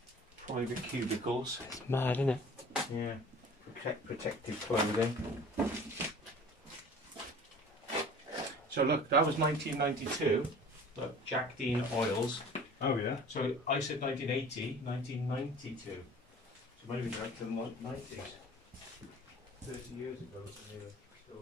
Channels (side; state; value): both; normal; correlation 0.44